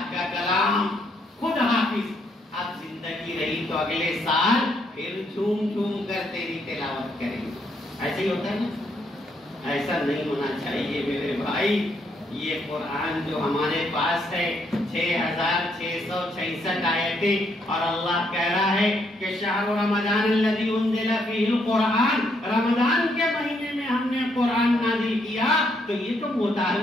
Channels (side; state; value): both; normal; correlation 0.73